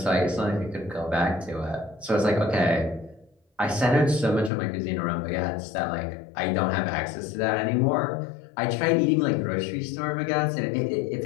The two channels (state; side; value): drops out; right; at 4.5 s